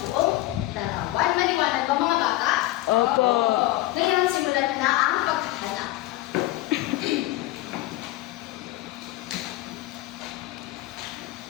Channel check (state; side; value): quieter; right; 17.4 dB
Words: buong larawan. Maliwanag ba mga bata? Opo. Ngayon, simulan na ang paghahanap.